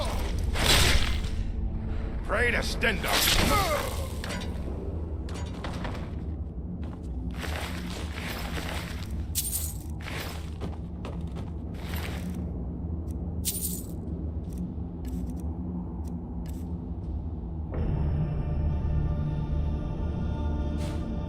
Pray to Stenda.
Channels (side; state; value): both; identical; correlation 1.00